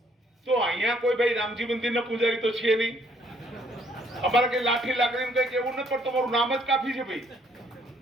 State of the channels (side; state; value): both; normal; correlation 0.66